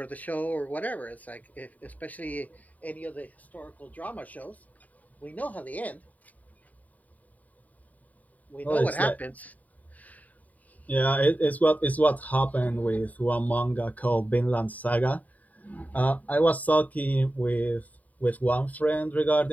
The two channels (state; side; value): late; right; 0.073 ms